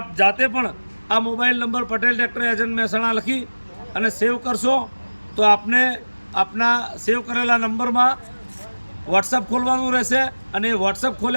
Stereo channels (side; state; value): both; inverted; correlation -1.00